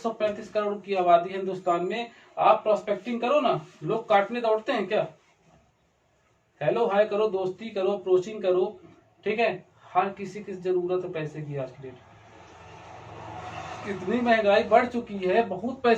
करोड़ की आबादी है हिंदुस्तान में, आप प्रोस्पेक्टिंग करो ना, लोग काटने दौड़ते हैं क्या? हेलो हाय करो, दोस्ती करो, अप्रोचिंग करो, ठीक है। हर किसी की जरूरत है पैसे की आज की डेट। इतनी महंगाई बढ़ चुकी है, बहुत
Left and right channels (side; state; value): both; identical; correlation 1.00